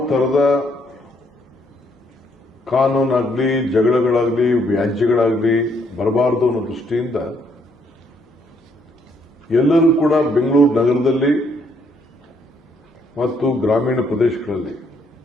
ತರದ ಕಾನೂನಾಗ್ಲಿ, ಜಗಳಗಳಾಗ್ಲಿ, ವ್ಯಾಜ್ಯಗಳಾಗ್ಲಿ ಬರಬಾರದು ಅನ್ನೋ ದೃಷ್ಟಿಯಿಂದ ಎಲ್ಲರೂ ಕೂಡ ಬೆಂಗಳೂರು ನಗರದಲ್ಲಿ ಮತ್ತು ಗ್ರಾಮೀಣ ಪ್ರದೇಶಗಳಲ್ಲಿ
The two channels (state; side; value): normal; both; correlation 0.70